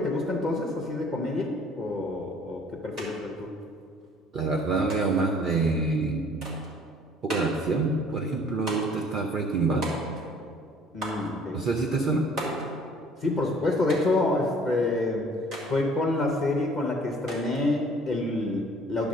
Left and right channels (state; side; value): normal; both; correlation 0.55